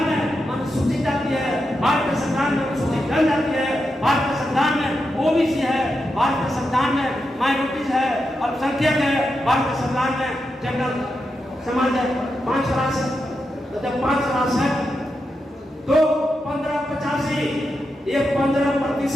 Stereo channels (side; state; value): both; normal; correlation 0.87